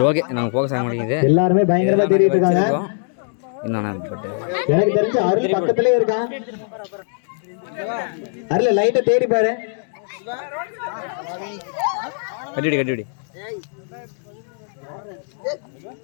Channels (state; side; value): silent; right; digital silence